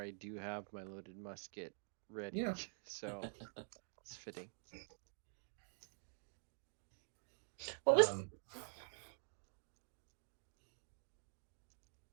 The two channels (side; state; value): left; silent; digital silence